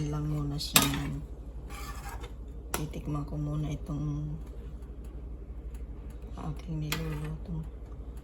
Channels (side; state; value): both; identical; correlation 1.00